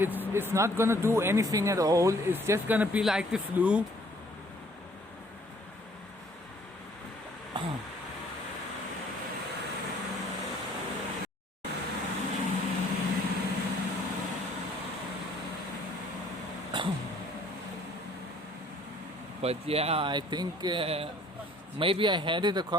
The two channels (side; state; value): both; normal; correlation 0.59